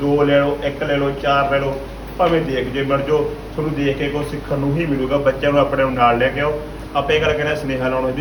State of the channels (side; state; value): both; identical; correlation 1.00